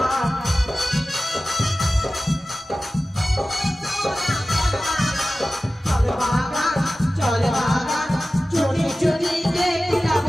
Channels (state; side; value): normal; both; correlation 0.96